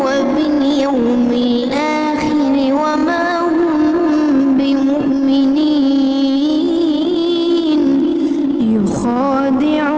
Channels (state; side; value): identical; both; correlation 1.00